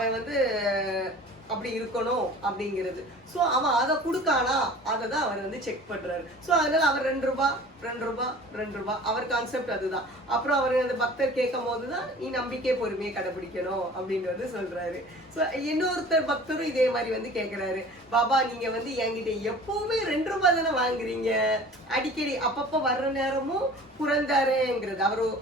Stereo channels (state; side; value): normal; both; correlation 0.44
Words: வந்து அப்படி இருக்கணும் அப்படிங்கிறது. ஸோ அவன் அதை கொடுக்கானா அதை தான் அவர் வந்து செக் பண்றாரு. ஸோ அதனால அவர் 2 ரூபாய் அவர் கான்செப்ட் அதுதான். அப்புறம் அவர் அந்த பக்தர் கேட்கும் போதுதான் நீ நம்பிக்கை பொறுமையை கடைபிடிக்கணும் அப்படின்னு வந்து சொல்றாரு. ஸோ இன்னொருத்தர் பக்தரும் இதே மாதிரி வந்து கேட்கிறாரு, பாபா நீங்க வந்து என்கிட்ட எப்பவுமே 2 ரூபாய் தானே வாங்குறீங்க, அடிக்கடி அப்பப்போ வர்ற நேரமும் புரந்தரேங்கிறது.